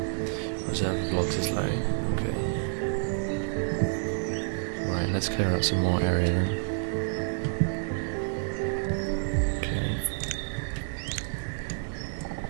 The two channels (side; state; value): left; silent; digital silence